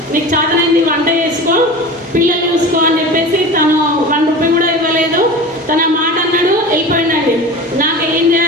నీకు చేతనైంది వంట చేసుకో, పిల్లలు చూసుకో అని చెప్పేసి తను 1 రూపాయి కూడా ఇవ్వలేదు. తన మాట అన్నాడు, వెళ్ళిపోయిందండి. నాకు ఏం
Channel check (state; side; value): normal; both; correlation 0.33